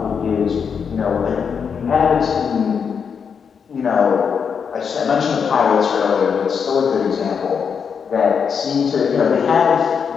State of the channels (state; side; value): quieter; right; 6.6 dB